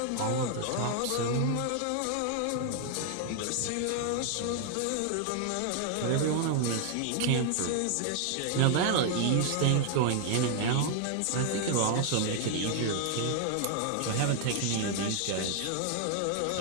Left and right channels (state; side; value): different; both; correlation 0.00